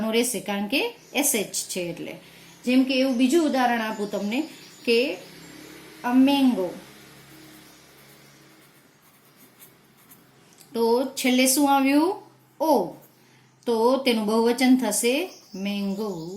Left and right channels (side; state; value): both; identical; correlation 1.00